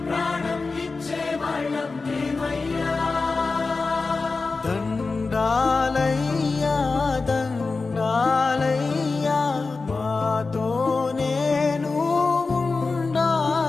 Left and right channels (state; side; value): quieter; right; 4.0 dB